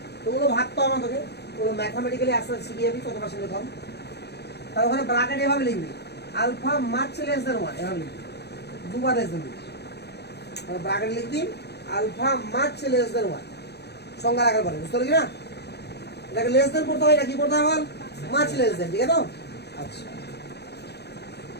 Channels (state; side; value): late; right; 0.48 ms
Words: তো ওগুলো ভাবতে হবে তোকে, ওগুলো ম্যাথমেটিক্যালি আস্তে আস্তে শিখে যাবি কত পার্সেন্টের কম। তাহলে ওখানে ব্র্যাকেট এভাবে লিখবি, আলফা মাচ লেস দেন 1, এভাবে লিখবি, দুবার লেস দেন। ব্র্যাকেট লিখবি আলফা মাচ লেস দেন 1, সংজ্ঞা রাখার পরে, বুঝতে পারলি না? এটাকে লেস দেন করতে হয় না, কি করতে হয় বল? মাচ লেস দেন, ঠিক আছে তো? আচ্ছা,